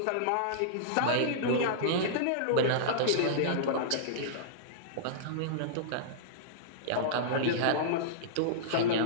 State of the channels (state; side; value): different; both; correlation -0.03